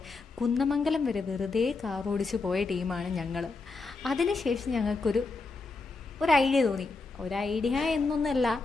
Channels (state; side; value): quieter; right; 3.8 dB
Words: കുന്നമംഗലം വരെ വെറുതെ കാർ ഓടിച്ച് പോയ ടീമാണ് ഞങ്ങൾ. അതിനുശേഷം ഞങ്ങൾക്കൊരു ഐഡിയ തോന്നി. ഒരു ഐഡിയ എന്നൊന്നല്ല,